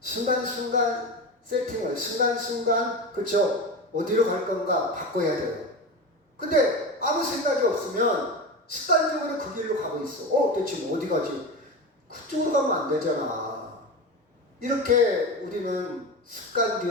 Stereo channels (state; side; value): normal; both; correlation 0.24